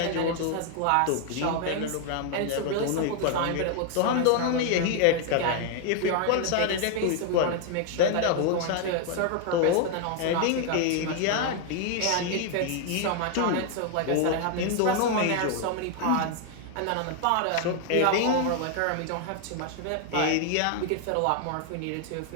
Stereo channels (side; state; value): both; different; correlation 0.00